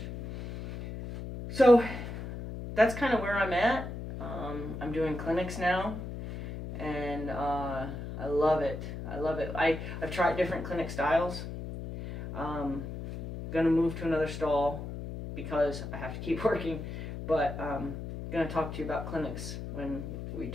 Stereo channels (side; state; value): left; noise; hum, 8 dB below the sound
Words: So that's kind of where I'm at. I'm doing clinics now, and I love it. I love it. I've tried different clinic styles. Gonna move to another stall because I have to keep working, but gonna talk to you about clinics when we